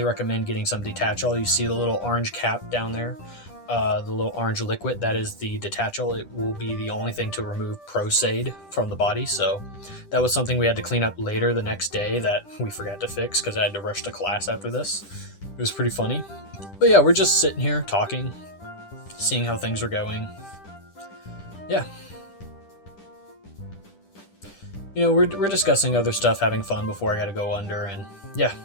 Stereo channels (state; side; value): late; right; 10 ms